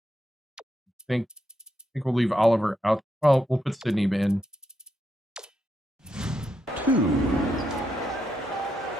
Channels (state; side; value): normal; both; correlation 0.82